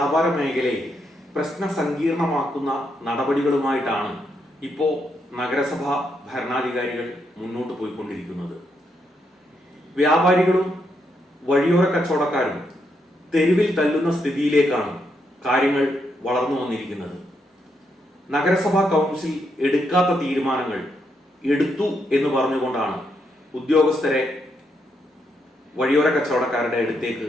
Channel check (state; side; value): normal; both; correlation 0.79